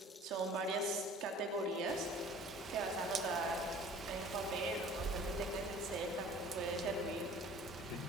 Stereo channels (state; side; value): normal; both; correlation 0.48